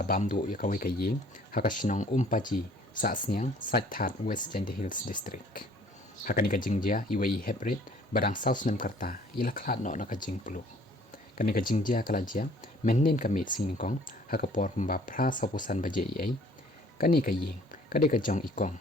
bam du ya kawei ka iing Sahsniang paji Sahsniang That West Hills District hakani ka jingjia iwei heprit badang Snem karta ila khlat no na ka jing pulu kani ka jingjia kala jia mennen ka mit sing kong hakapor pamba phra sapusan baje ai kani ka iing kade ka jong ikong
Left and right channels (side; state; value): both; normal; correlation 0.56